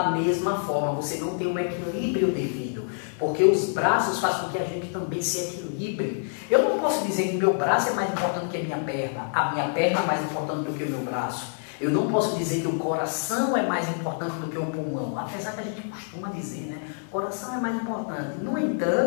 mesma forma. Você não tem um equilíbrio devido. Porque os braços fazem com que a gente também se equilibre. Eu não posso dizer que meu braço é mais importante que a minha perna. A minha perna é mais importante do que o meu braço. Eu não posso dizer que o coração é mais importante do que o pulmão. Apesar que a gente costuma dizer, né? O coração é mais importante. No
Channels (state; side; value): silent; right; 60 dB below the other